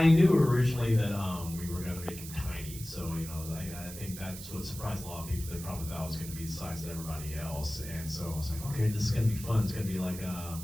knew originally that we were going to make him tiny, so I think that's what surprised a lot of people. They probably thought it was going to be the size of everybody else, and so I was like, okay, this is going to be fun. It's going to be like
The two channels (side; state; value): right; noise; hiss, 12 dB below the sound